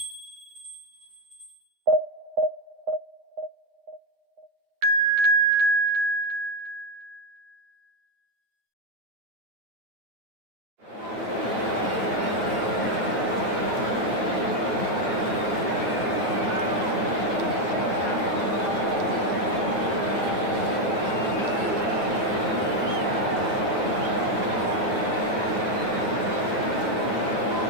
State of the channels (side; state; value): left; late; 9.3 ms